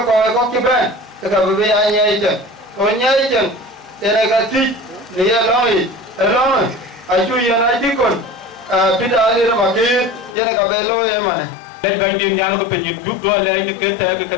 có cái bên cái bây giờ nhảy chân còn nhảy chân thế này cái gì này long ai chui ra này đi con pita đi mà kia thế này cái bê lôi em mà Đây bánh đi nhà nó có nhìn chụp rồi đây như cái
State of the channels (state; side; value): drops out; right; at 10.4 s